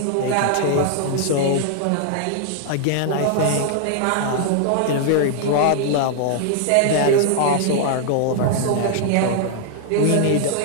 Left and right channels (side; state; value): both; different; correlation 0.00